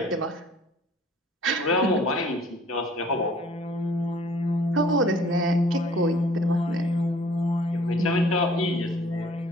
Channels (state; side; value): normal; both; correlation 0.54